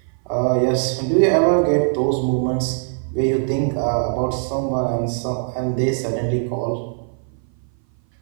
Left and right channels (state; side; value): silent; left; 58 dB below the other